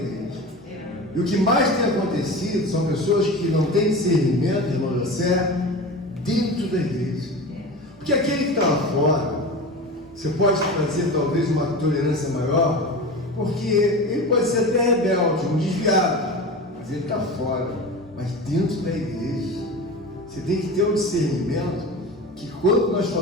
E o que mais tem acontecido são pessoas que não têm discernimento, irmão José, dentro da igreja. Porque aquele que está lá fora, você pode fazer talvez uma tolerância maior, porque ele pode ser até rebelde, um desviado, mas ele está fora. Mas dentro da igreja, você tem que ter um discernimento que quando nós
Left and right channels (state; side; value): normal; both; correlation 0.30